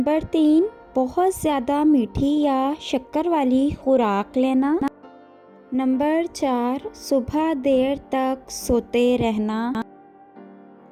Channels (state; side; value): identical; both; correlation 1.00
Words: 3, बहुत ज़्यादा मीठी या शक्कर वाली खुराक लेना। नंबर 4, सुबह देर तक सोते रहना।